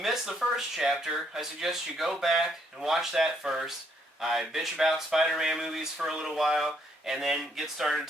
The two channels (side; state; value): both; normal; correlation 0.71